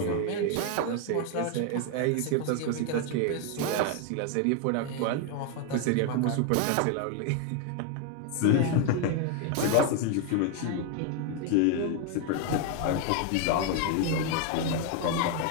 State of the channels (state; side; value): different; both; correlation 0.01